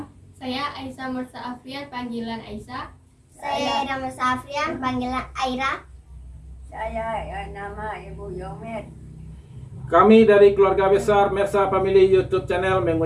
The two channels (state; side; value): identical; both; correlation 1.00